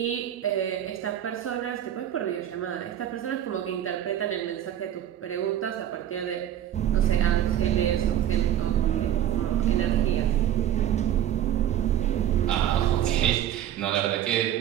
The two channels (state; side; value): quieter; left; 11.1 dB